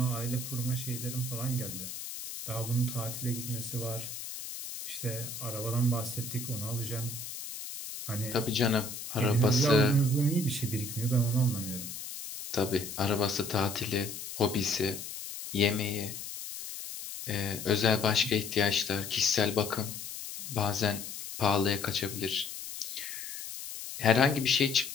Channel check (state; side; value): noise; left; hiss, 9 dB below the sound